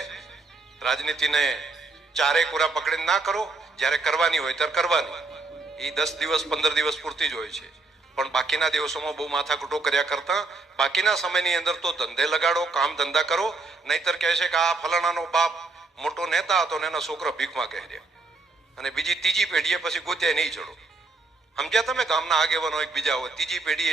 રાજનીતિને ચારે કોરા પકડીને ના કરો. જ્યારે કરવાની હોય ત્યારે કરવાની. એ 10 દિવસ 15 દિવસ પૂરતી જ હોય છે. પણ બાકીના દિવસોમાં બહુ માથાકૂટો કર્યા કરતા બાકીના સમયની અંદર તો ધંધે લગાડો, કામ ધંધા કરો. નહીતર કહે છે કે આ ફલાણાનો બાપ મોટો નેતા હતો ને એના છોકરા ભીખમાં કહેર્યા, અને બીજી ત્રીજી પેઢીએ પછી ગોત્યા નહીં ચડો. સમજ્યા તમે? ગામના આગેવાનો એક બીજા હોય, ત્રીજી પેઢી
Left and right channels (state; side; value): quieter; left; 3.6 dB